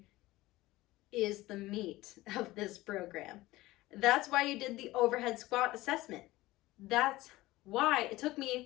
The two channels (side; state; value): right; quieter; 18.3 dB